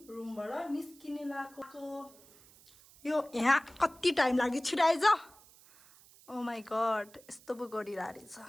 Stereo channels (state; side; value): noise; right; hiss, 24 dB below the sound